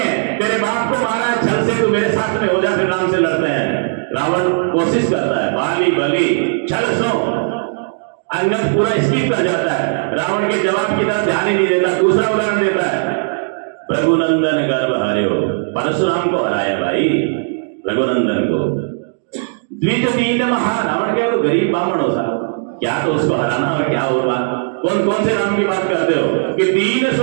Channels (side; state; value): left; silent; digital silence